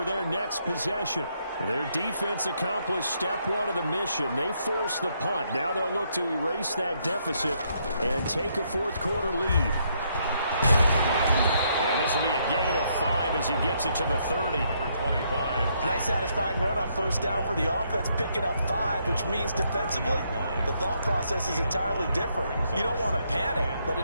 their next possession. Their defense accomplished step 1 of the mission. They forced the punt. Now they'll look to erase that deficit and take a 4th quarter lead. And this will be a gain of 5 as he gets it to the 30. Number 25. Nice satisfying run on 1st down for the offense, picking up 5, which means defensively, the thought process is entirely different. You don't want to panic, but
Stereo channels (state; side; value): inverted; both; correlation -0.74